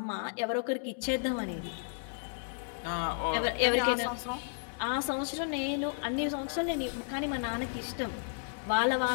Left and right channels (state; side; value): silent; right; digital silence